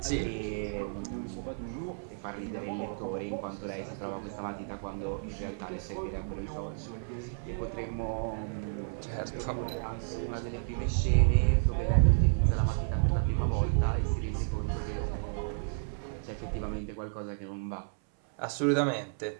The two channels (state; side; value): silent; left; 56 dB below the other